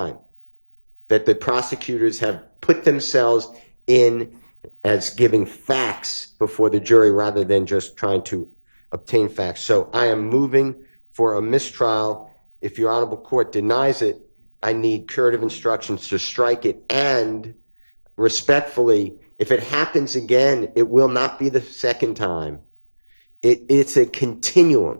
that the prosecutors have put themselves in as giving facts before the jury rather than just trying to obtain facts. So I am moving for a mistrial. If your honorable court denies it, I need curative instructions to strike it, and respectfully, if it happens again, it will not be the second time. It's a continuum.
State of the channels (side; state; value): both; inverted; correlation -1.00